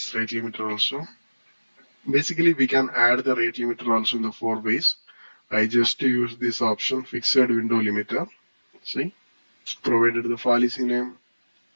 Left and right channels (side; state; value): both; inverted; correlation -1.00